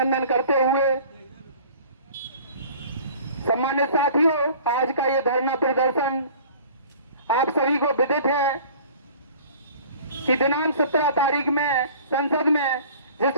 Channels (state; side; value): inverted; both; correlation -0.47